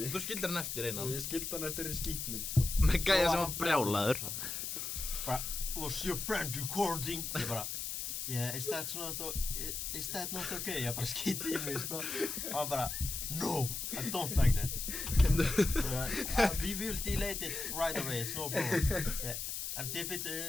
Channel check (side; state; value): left; noise; hiss, 4 dB below the sound